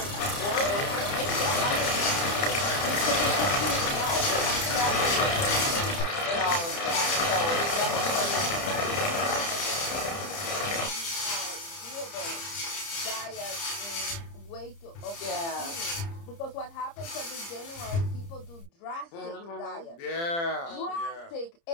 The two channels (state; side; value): late; right; 30 ms